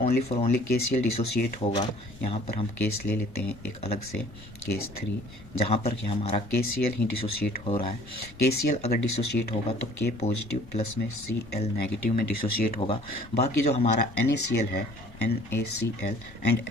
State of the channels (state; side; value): normal; both; correlation 0.52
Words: ओनली KCl डिसोसिएट होगा, यहाँ पर हम केस ले लेते हैं एक अलग से, केस 3, जहाँ पर कि हमारा KCl ही डिसोसिएट हो रहा है। KCl अगर डिसोसिएट होगा तो K पॉजिटिव प्लस में Cl नेगेटिव में डिसोसिएट होगा। बाकी जो हमारा NaCl है, NaCl एंड